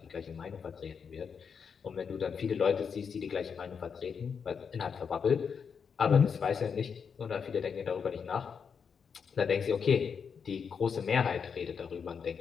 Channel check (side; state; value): right; quieter; 6.4 dB